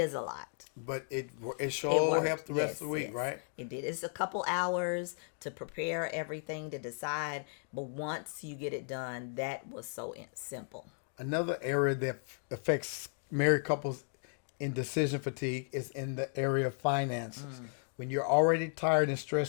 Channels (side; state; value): right; silent; 54 dB below the other